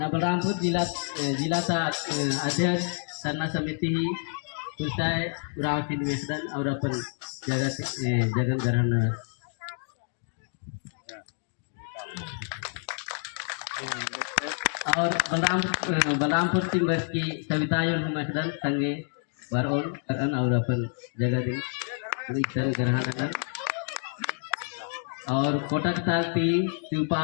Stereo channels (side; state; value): right; silent; 59 dB below the other